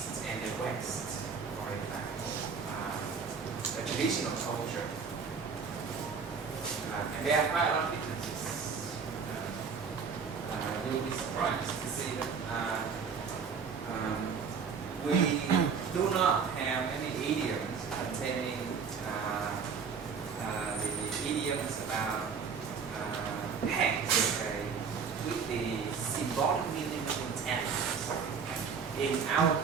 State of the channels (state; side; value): quieter; left; 5.9 dB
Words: and the West, for example, the traditional culture. And there are quite a lot of differences. You'll be surprised to see that we do not have any idioms containing the idioms about hands, with the symbolic meaning of intent. In our